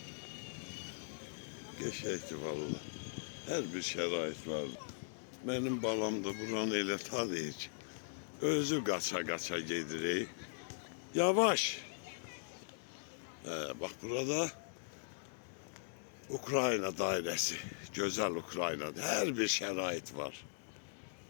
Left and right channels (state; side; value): silent; right; digital silence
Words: Geçəkdi vallahi. Her bir şərait var. Benim balam da buranı elə tanıyır ki. Özü qaça gedirik. Yavaş. Bak burada Ukrayna dairesi. Güzel Ukrayna. Her bir şərait var.